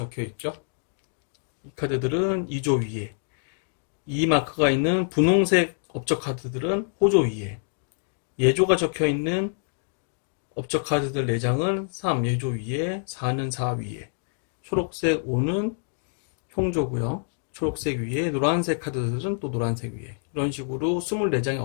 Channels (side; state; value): right; silent; digital silence